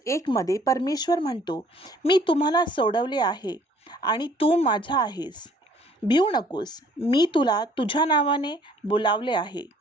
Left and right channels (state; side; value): normal; both; correlation 0.58